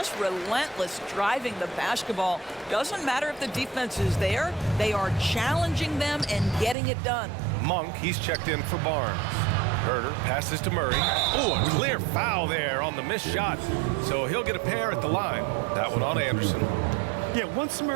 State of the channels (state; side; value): drops out; left; at 6.8 s